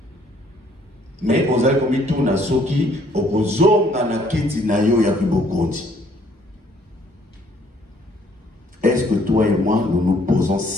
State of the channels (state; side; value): normal; both; correlation 0.63